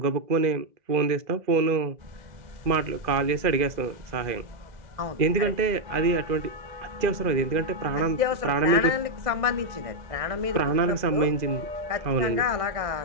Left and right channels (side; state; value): left; late; 2.0 ms